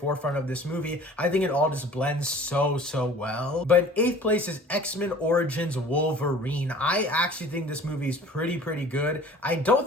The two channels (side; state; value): both; normal; correlation 0.46